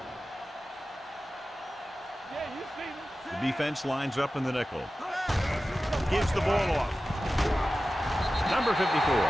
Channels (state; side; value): normal; both; correlation 0.95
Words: Yeah, you see me. The defense lines up in the nickel. Gives the ball off. Number 54